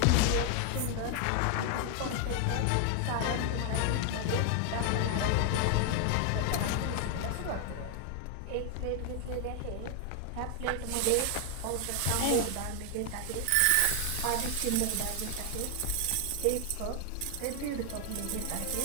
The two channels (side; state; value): both; different; correlation 0.00